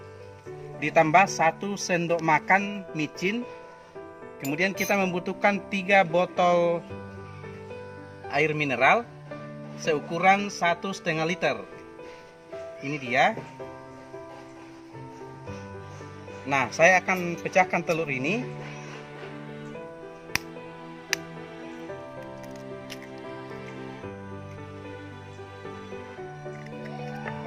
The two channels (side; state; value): both; identical; correlation 1.00